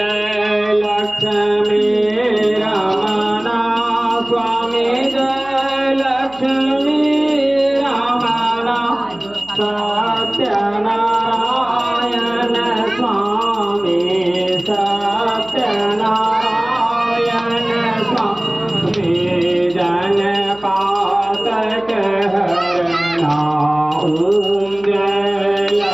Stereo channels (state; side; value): noise; right; hum, 25 dB below the sound